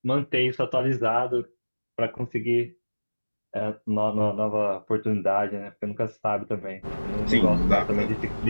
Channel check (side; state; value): both; inverted; correlation -1.00